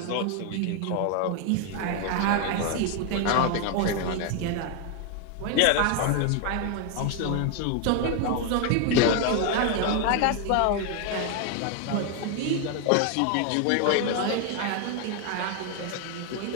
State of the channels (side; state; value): both; different; correlation 0.01